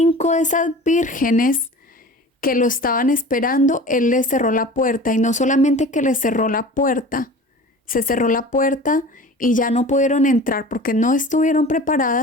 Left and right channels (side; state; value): both; normal; correlation 0.39